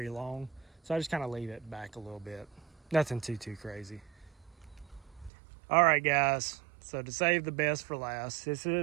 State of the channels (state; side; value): drops out; left; at 5.3 s